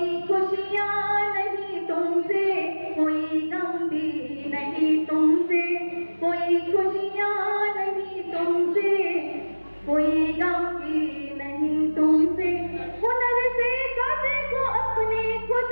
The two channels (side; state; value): both; inverted; correlation -1.00